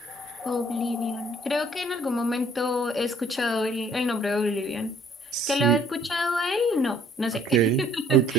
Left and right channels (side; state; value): both; normal; correlation 0.59